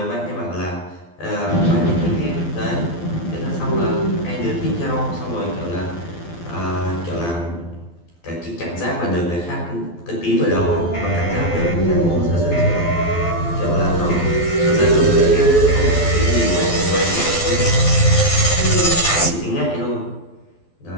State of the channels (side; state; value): right; late; 12 ms